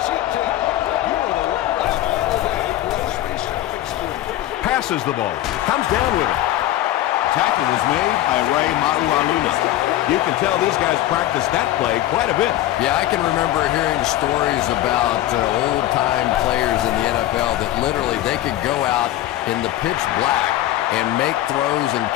Passes the ball. Comes down with it. Tackle was made by Ray Maualuna. You can tell these guys practice that play quite a bit. Yeah, I can remember hearing stories about old-time players in the NFL that literally they could go out in the pitch black and make throws and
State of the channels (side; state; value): right; quieter; 14.1 dB